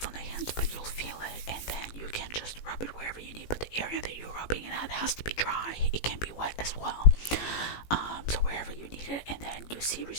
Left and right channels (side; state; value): right; late; 18 ms